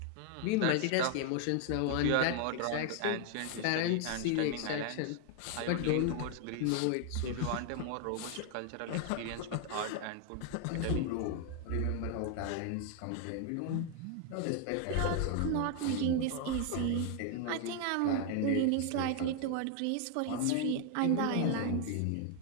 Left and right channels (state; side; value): different; both; correlation 0.00